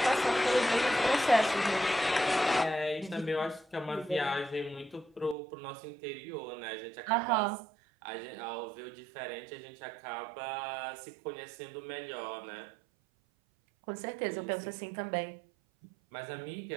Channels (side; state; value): left; drops out; at 5.4 s